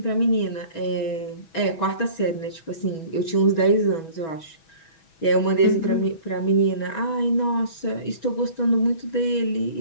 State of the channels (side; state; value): right; late; 6.2 ms